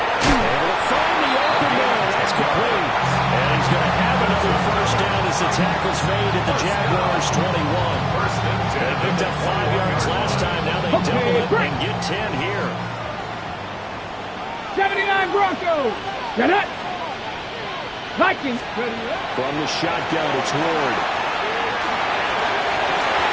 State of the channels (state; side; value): identical; both; correlation 1.00